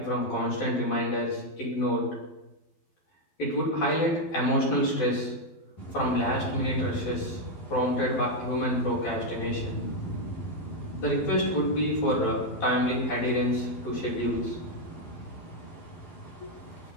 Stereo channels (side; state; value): right; late; 11 ms